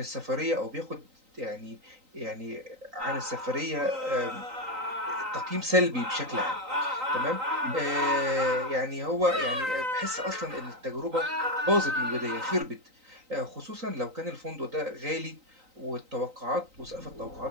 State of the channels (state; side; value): late; left; 3.9 ms